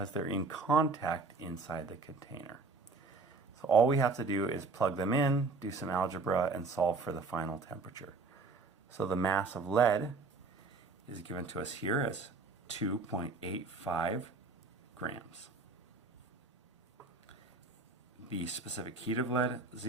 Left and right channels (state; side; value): quieter; left; 3.9 dB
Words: they're in contact inside the container. So all we have to do is plug them in, do some algebra, and solve for the final temperature. So the mass of lead is given to us here as 2.85 grams. The specific heat of lead,